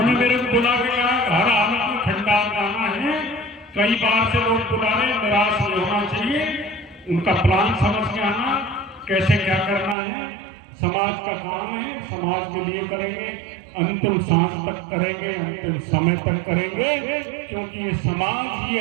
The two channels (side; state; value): left; drops out; at 10.0 s